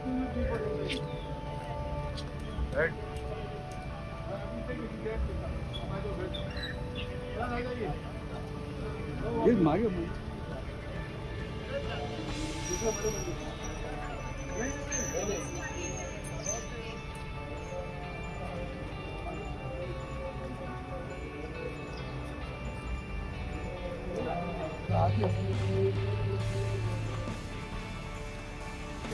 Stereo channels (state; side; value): identical; both; correlation 1.00